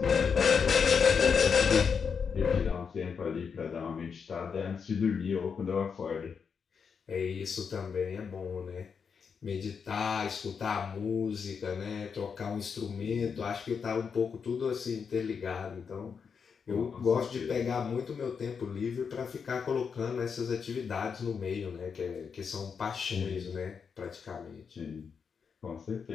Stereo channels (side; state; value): right; quieter; 6.2 dB